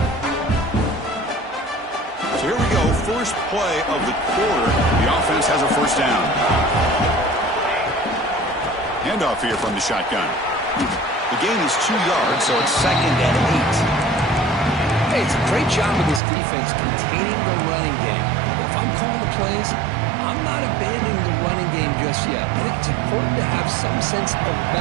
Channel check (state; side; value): drops out; left; at 16.2 s